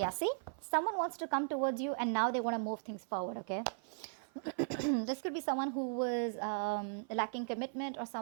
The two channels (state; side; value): silent; left; 53 dB below the other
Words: see? Someone wants to come towards you and now they want to move things forward, okay? This could be someone who was lacking commitment, or